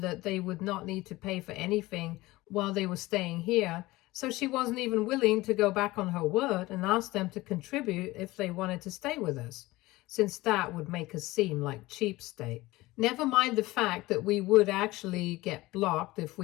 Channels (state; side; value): quieter; right; 19.4 dB